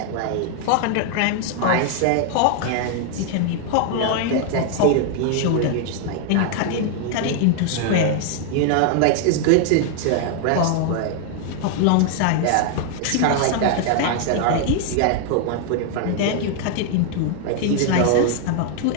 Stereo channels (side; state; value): both; different; correlation 0.00